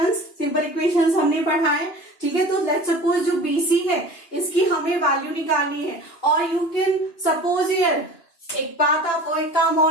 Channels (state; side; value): late; right; 2.9 ms